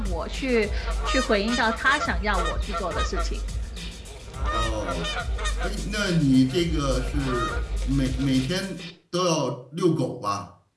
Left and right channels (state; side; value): identical; both; correlation 1.00